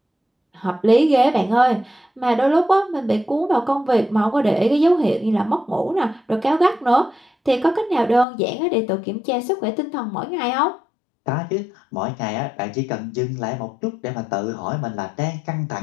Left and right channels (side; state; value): right; drops out; at 8.2 s